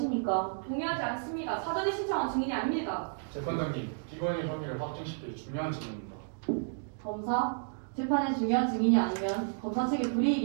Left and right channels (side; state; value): left; silent; digital silence